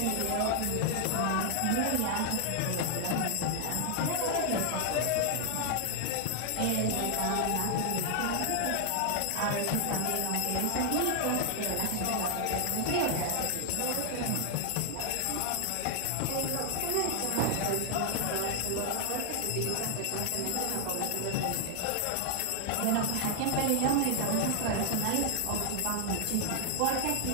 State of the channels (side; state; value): both; different; correlation 0.00